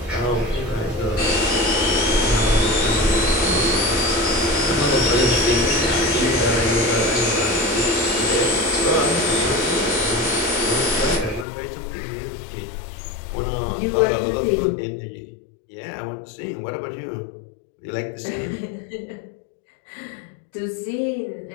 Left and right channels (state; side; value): drops out; right; at 11.5 s